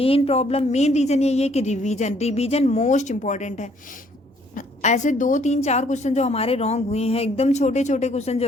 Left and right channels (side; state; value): both; normal; correlation 0.64